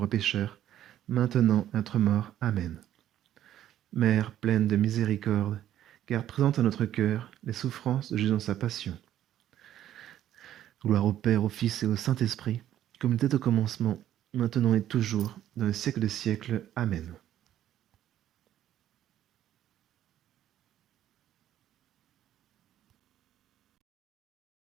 pécheurs, maintenant et à notre mort. Amen. Mère pleine de miséricorde, garde présente à notre cœur les souffrances de Jésus dans sa passion. Gloire au Père, au Fils et au Saint-Esprit, comme il était au commencement, maintenant et toujours, dans le siècle des siècles. Amen.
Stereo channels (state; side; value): quieter; left; 11.8 dB